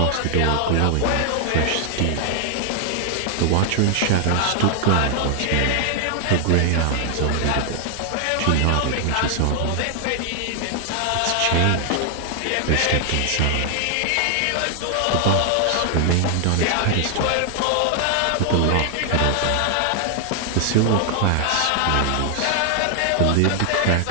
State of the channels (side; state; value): both; different; correlation 0.00